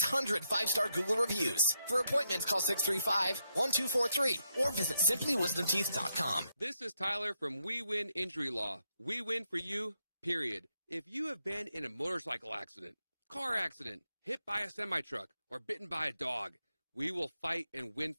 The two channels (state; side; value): inverted; both; correlation -0.82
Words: 5-star Google reviews. For appointments, call 635-1243 or visit simplywisdomteeth.com. This is Tyler from We Win Injury Law. We win for you, period. If you have been in a motorcycle accident, car accident, hit by a semi-truck, or bitten by a dog, we will fight and win